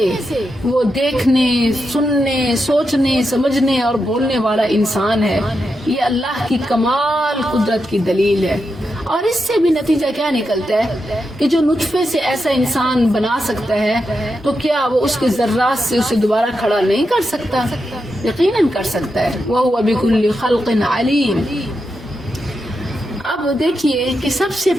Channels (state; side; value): normal; both; correlation 0.87